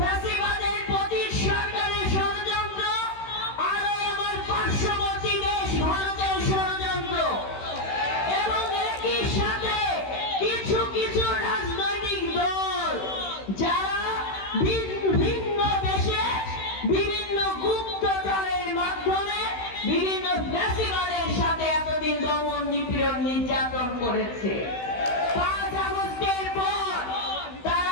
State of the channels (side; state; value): right; late; 16 ms